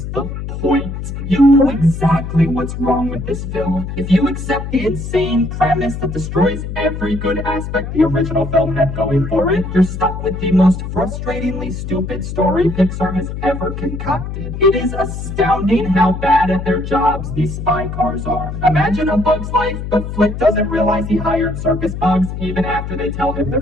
the point? You know exactly what's wrong with this film. If you accept the insane premise that destroys every good aspect the original film had going for it, you're stuck with the most frustratingly stupid story Pixar has ever concocted. It is astounding how bad at their jobs these spy cars are. Imagine A Bug's Life, but Flick doesn't realize he hired circus bugs even after they tell him they're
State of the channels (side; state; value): left; noise; hum, 6 dB below the sound